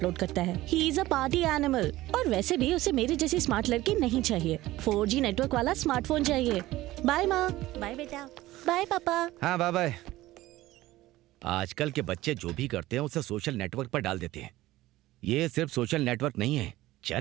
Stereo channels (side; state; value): left; quieter; 16.9 dB